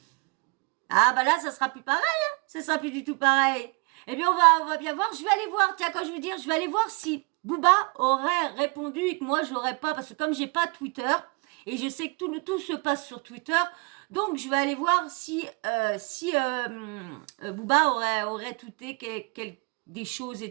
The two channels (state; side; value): quieter; left; 30.5 dB